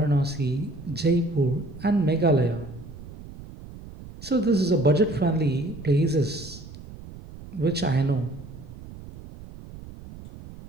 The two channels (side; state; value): right; noise; rumble, 15 dB below the sound